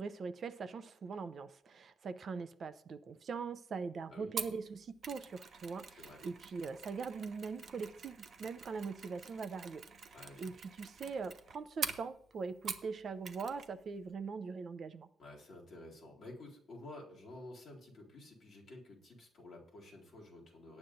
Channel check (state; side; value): quieter; left; 4.4 dB